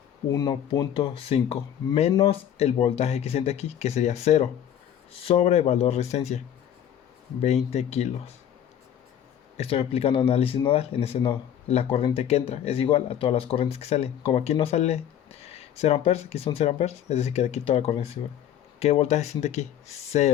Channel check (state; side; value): quieter; right; 10.0 dB